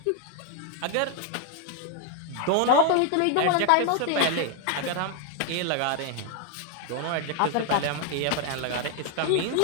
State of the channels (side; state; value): both; different; correlation 0.00